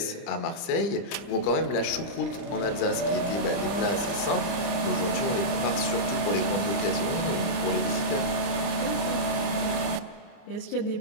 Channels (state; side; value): late; right; 29 ms